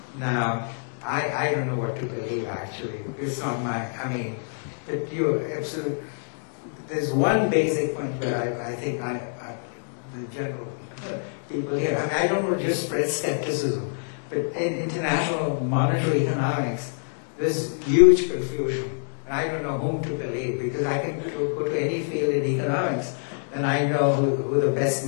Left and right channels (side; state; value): right; silent; digital silence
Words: Now, I don't know what to believe, actually. It's not my, but you're absolutely, there's one basic point where I think the general people here, I don't want to just spread skepticism, but in international monetary economics, there's huge confusion. And I don't know whom to believe, because I can go to any field in economics, and I know who the best